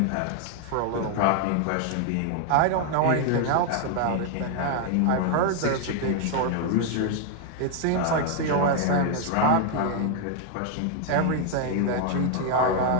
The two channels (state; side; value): different; both; correlation 0.00